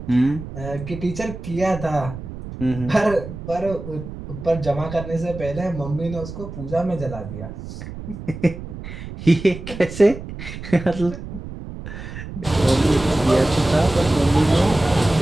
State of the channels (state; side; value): noise; right; rumble, 11 dB below the sound